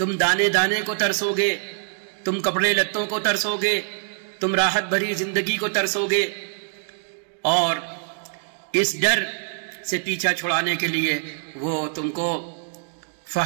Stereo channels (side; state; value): left; silent; digital silence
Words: دانے دانے کو ترسو گے، تم کپڑے لتوں کو ترسو گے، تم راحت بھری زندگی کو ترسو گے. اور اس ڈر سے پیچھا چھڑانے کے لیے وہ تم کو